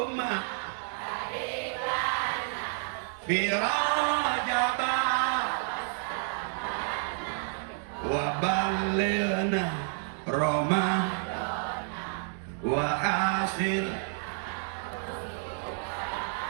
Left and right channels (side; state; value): left; silent; 58 dB below the other